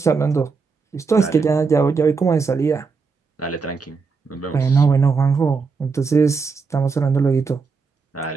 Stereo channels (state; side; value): quieter; left; 4.9 dB